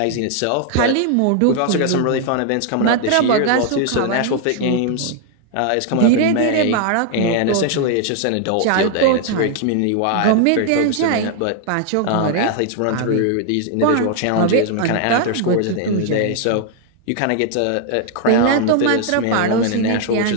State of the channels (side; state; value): both; different; correlation 0.00